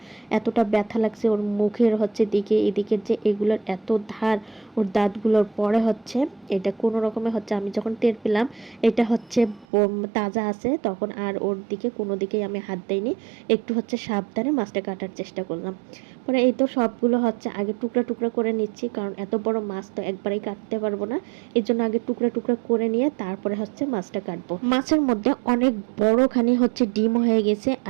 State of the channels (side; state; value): left; drops out; at 9.7 s